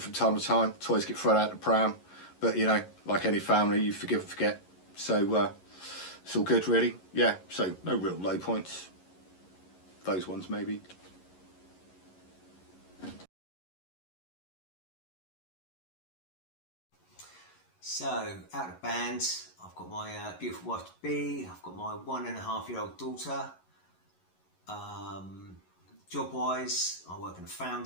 time to time, toys get thrown out the pram, but you know, like any family, you forgive and forget. So it's all good, really. Yeah, so no real low points. Those ones, maybe. So, out of band, I've got my beautiful wife to be, I've got my 1.5-year-old daughter. Job-wise, I work in a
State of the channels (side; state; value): right; late; 11 ms